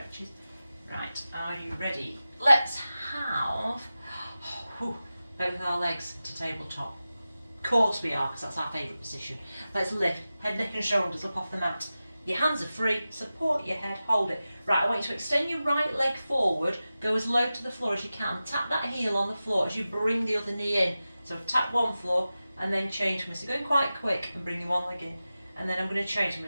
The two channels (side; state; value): both; inverted; correlation -0.94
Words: Right, are you ready? Let's have both our legs to tabletop. Of course we are, because that's our favourite position. Let's lift head, neck and shoulders up off the mat. Your hands are free, support your head, hold it. Right, I want you to extend your right leg forward, go as low to the floor as you can. Tap that heel on the floor as you bring the other knee in. So tap one floor and then change me. So going quite quick and bring your one leg in. And then I'm going to change, I'm